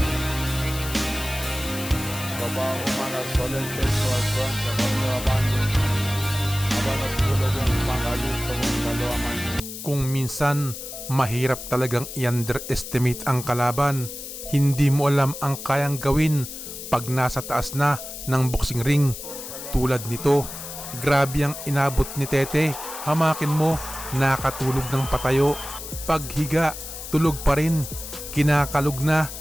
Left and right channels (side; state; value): left; noise; hiss, 10 dB below the sound